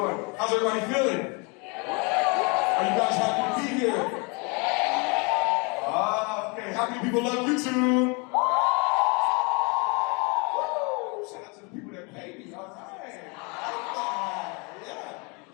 How's everybody feeling? Are you guys happy to be here? Okay. How many people love YouTube? Woo! Shout out to the people that pay me. All right. Yeah.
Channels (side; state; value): right; quieter; 31.7 dB